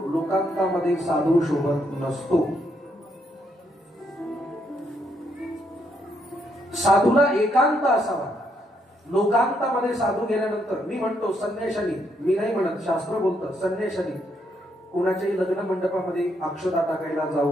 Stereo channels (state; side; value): normal; both; correlation 0.75